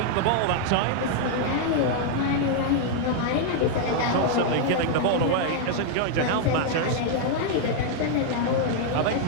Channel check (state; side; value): different; both; correlation -0.01